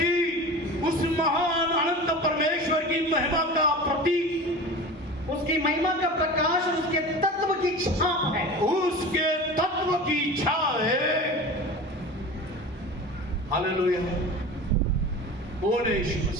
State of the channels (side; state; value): both; normal; correlation 0.34